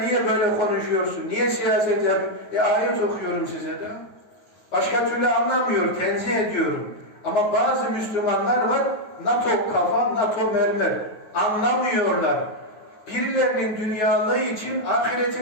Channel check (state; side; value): late; right; 9.4 ms